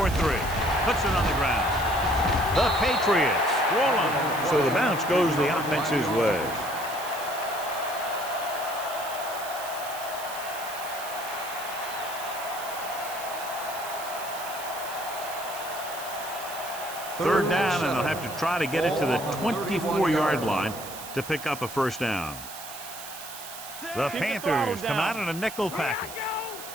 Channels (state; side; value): noise; right; hiss, 12 dB below the sound